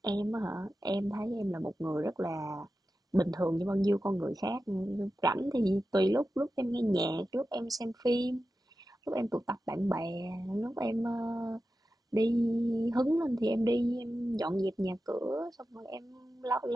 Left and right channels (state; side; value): normal; both; correlation 0.92